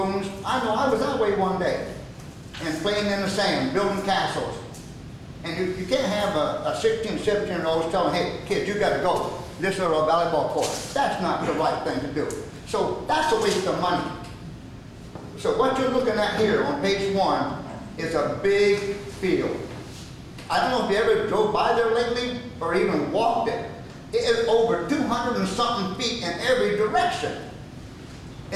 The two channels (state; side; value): identical; both; correlation 1.00